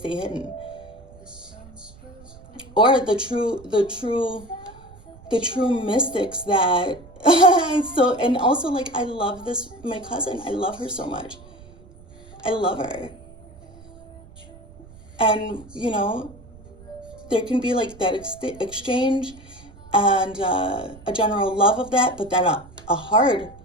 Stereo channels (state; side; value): noise; right; rumble, 21 dB below the sound